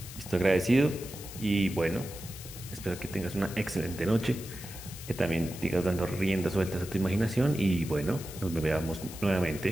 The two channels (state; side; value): noise; left; hiss, 13 dB below the sound